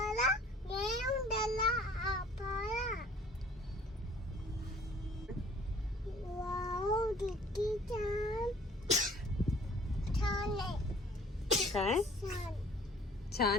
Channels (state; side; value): normal; both; correlation 0.54